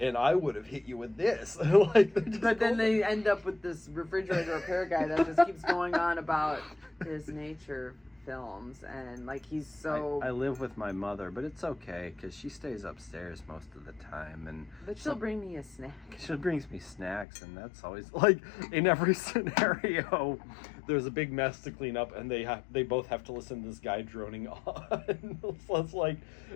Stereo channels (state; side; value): drops out; right; at 17.2 s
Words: I would have hit you with this. But then they end up with this refrigerator repair guy that just keeps going on about his nature films, and like he's so. I live with my mother, but it's okay because she stays upstairs most of the time, and but she'll bring me a snack. She brings me snacks, and that's always like in every scenario. There's a big mess to clean up, and they both have to listen to this guy droning on. So it's like